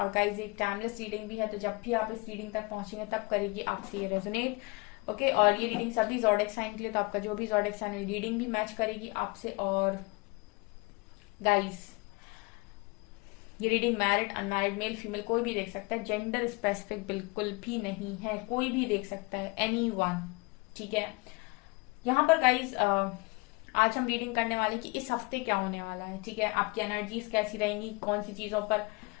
गाइस एक टाइमलेस रीडिंग भी है, तो जब भी आप इस रीडिंग तक पहुंचेंगे तब करेगी आपसे ये रेजोनेट। ओके और ये रीडिंग सभी ज़ोडिएक साइन के लिए, तो आपका जो भी ज़ोडिएक साइन रीडिंग भी मैच करेगी आपसे। और गाइस ये reading married unmarried male female कोई भी देख सकता है, जेंडर स्पेसिफिक बिल्कुल भी नहीं है, कोई भी देख सकता है, एनीवन। ठीक है, यहाँ पर गाइस आज हम रीडिंग करने वाले कि इस हफ्ते क्या होने वाला है। ठीक है, आपकी एनर्जीज कैसी रहेंगी, कौन सी चीजों पर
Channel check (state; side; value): quieter; right; 26.5 dB